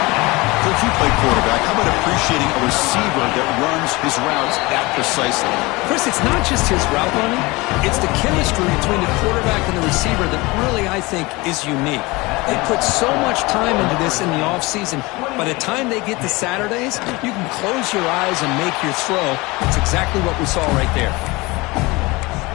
Coach, you play quarterback. How about appreciating a receiver that runs his routes that precisely? Chris, it's not just his route running. It's the chemistry between the quarterback and the receiver that really, I think, is unique. They put so much time into this in the offseason. By the time they get to Saturdays, you can close your eyes and make your throw. It's exactly what we saw right there.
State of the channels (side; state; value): right; quieter; 23.2 dB